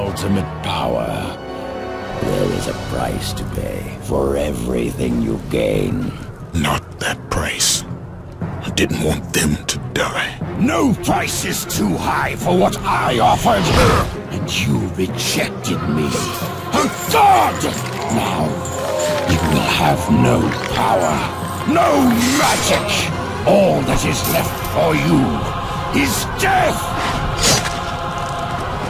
power. There is a price to pay for everything you gain. Not that price. I didn't want them to die. No price is too high for what I offered. And you rejected me. A god! Now, you will have no power, no magic. All that is left for you is death!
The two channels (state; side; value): identical; both; correlation 1.00